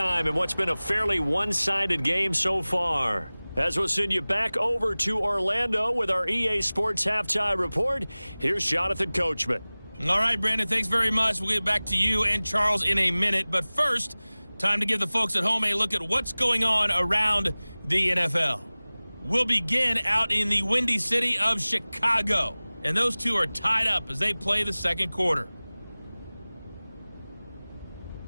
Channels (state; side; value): inverted; both; correlation -0.99